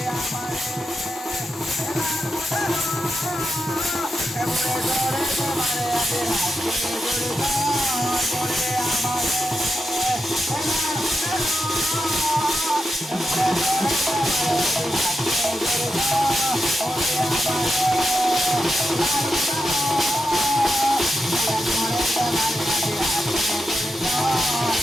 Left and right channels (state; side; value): normal; both; correlation 0.87